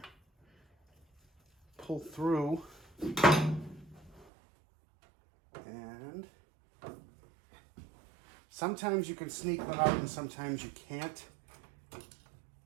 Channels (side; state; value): left; drops out; at 4.2 s